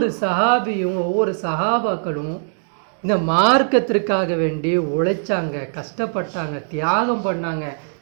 சஹாபியும் ஒவ்வொரு சஹாபாக்களும் இந்த மார்க்கத்திற்காக வேண்டி உழைச்சாங்க, கஷ்டப்பட்டாங்க, தியாகம் பண்ணாங்க.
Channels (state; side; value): silent; left; digital silence